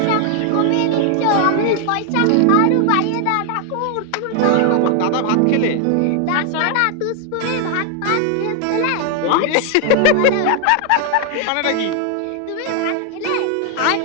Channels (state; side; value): different; both; correlation 0.00